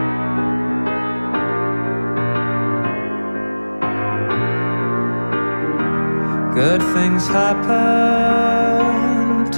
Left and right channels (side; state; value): both; inverted; correlation -1.00